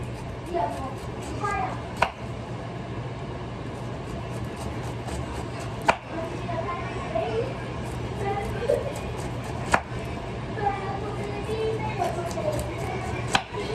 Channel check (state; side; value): identical; both; correlation 1.00